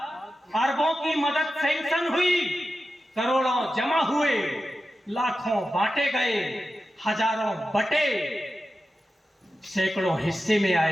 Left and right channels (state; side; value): normal; both; correlation 0.92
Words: अरबों की मदद सैंक्शन हुई, करोड़ों जमा हुए, लाखों बांटे गए, हजारों बटे, सैकड़ों हिस्से में